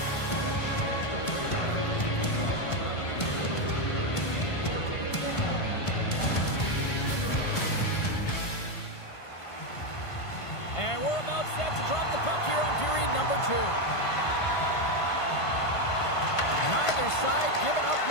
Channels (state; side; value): late; right; 1.5 ms